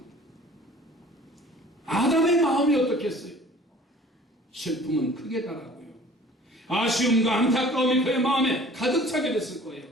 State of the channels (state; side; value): normal; both; correlation 0.49